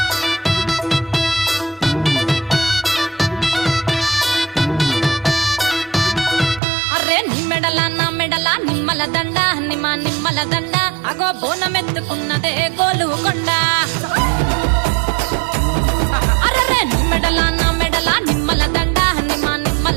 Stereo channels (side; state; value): left; drops out; at 6.6 s